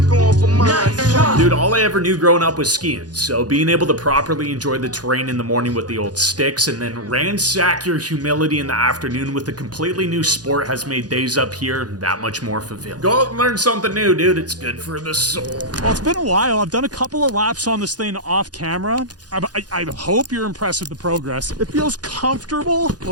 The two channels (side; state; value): left; late; 0.69 ms